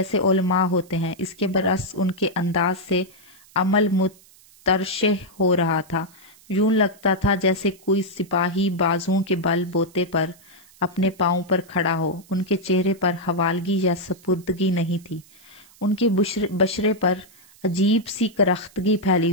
علماء ہوتے ہیں، اس کے برعکس ان کے انداز سے عمل مترشح ہو رہا تھا۔ یوں لگتا تھا جیسے کوئی سپاہی بازوؤں کے بل بوتے پر اپنے پاؤں پر کھڑا ہو۔ ان کے چہرے پر حوالگی یا سپردگی نہیں تھی، ان کے بشرے پر عجیب سی کرختگی پھیلی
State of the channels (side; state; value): right; noise; hiss, 26 dB below the sound